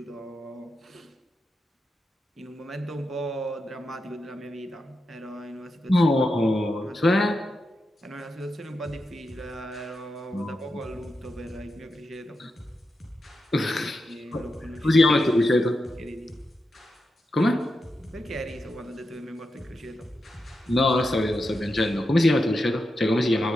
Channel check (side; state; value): both; normal; correlation 0.88